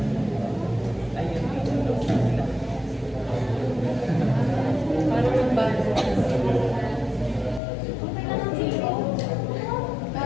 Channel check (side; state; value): right; drops out; at 7.6 s